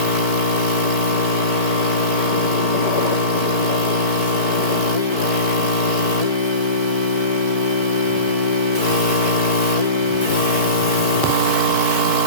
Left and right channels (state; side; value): late; right; 4.6 ms